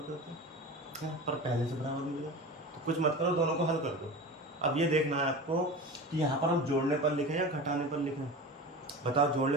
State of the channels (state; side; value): normal; both; correlation 0.32